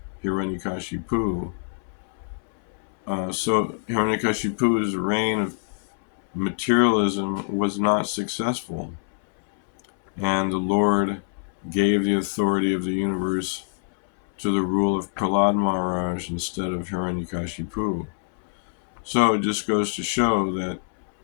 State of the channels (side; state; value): right; silent; 62 dB below the other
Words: Hiranyakashipu. So Hiranyakashipu's reign of materialism was not successful, and the Lord gave the authority of the universe to the rule of Prahlad Maharaj instead of Hiranyakashipu. So it just goes to show that